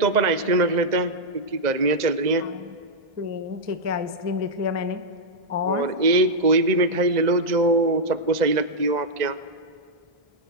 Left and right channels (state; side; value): late; left; 2.0 ms